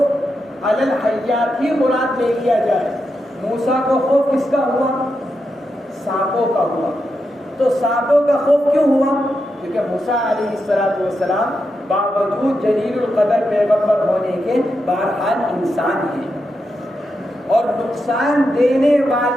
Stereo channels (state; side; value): normal; both; correlation 0.86